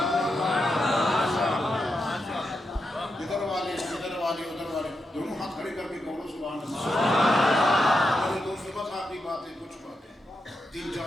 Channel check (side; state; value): both; normal; correlation 0.86